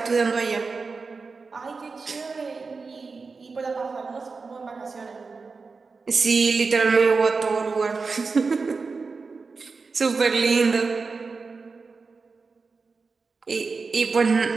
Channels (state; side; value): quieter; left; 4.5 dB